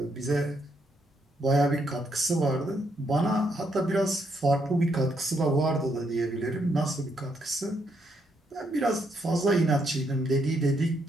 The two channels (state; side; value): normal; both; correlation 0.75